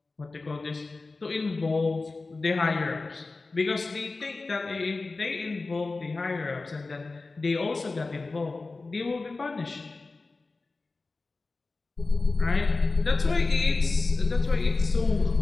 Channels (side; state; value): right; quieter; 3.6 dB